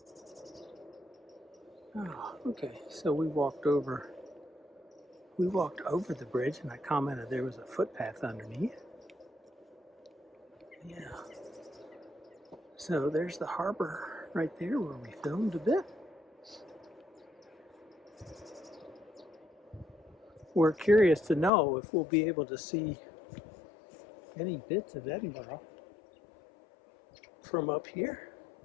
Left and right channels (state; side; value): drops out; right; at 21.5 s